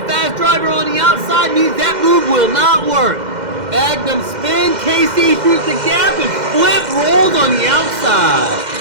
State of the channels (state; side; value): late; left; 2.1 ms